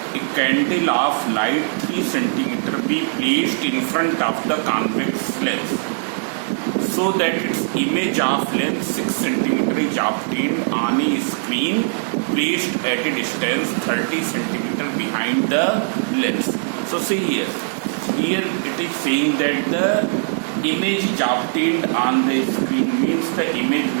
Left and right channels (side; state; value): left; silent; digital silence